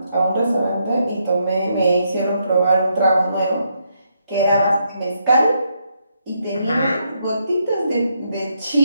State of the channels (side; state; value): both; inverted; correlation -0.78